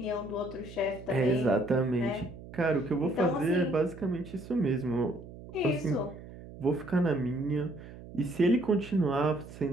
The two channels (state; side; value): noise; right; hum, 15 dB below the sound